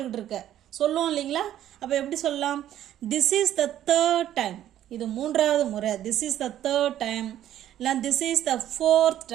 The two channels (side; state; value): left; quieter; 11.9 dB